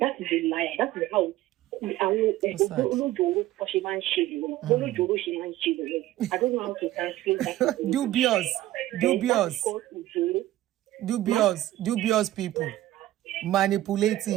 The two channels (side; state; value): left; quieter; 15.2 dB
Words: is a lie. That is how I don't know how to translate that. Dubious people.